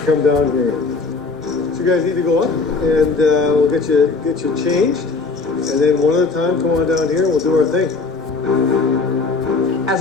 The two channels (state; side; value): quieter; right; 4.1 dB